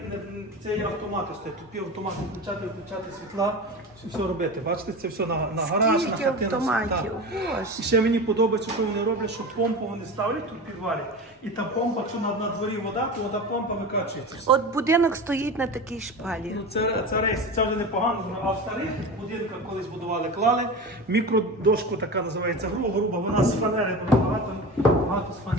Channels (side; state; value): both; normal; correlation 0.28